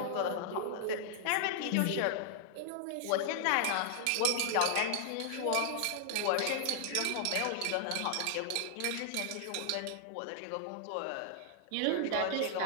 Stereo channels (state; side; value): different; both; correlation 0.00